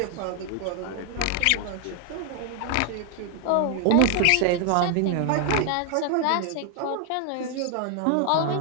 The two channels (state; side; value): different; both; correlation 0.00